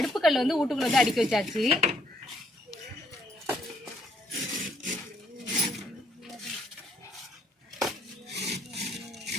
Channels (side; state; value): both; normal; correlation 0.68